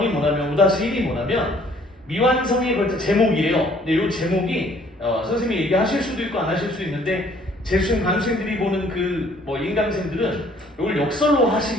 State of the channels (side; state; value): both; normal; correlation 0.59